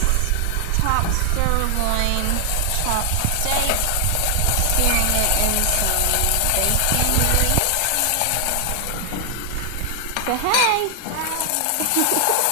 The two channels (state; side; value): different; both; correlation 0.00